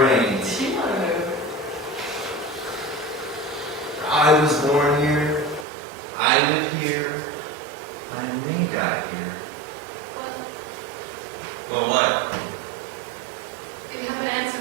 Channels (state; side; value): drops out; left; at 5.7 s